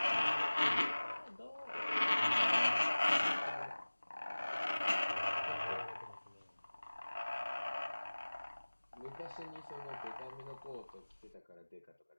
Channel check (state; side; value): inverted; both; correlation -1.00